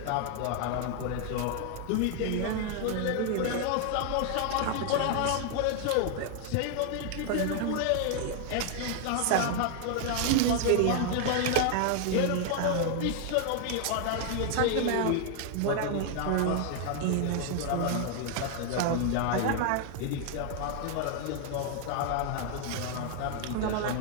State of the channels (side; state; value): both; different; correlation 0.00